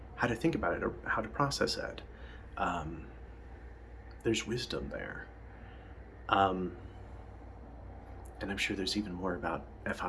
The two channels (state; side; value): identical; both; correlation 1.00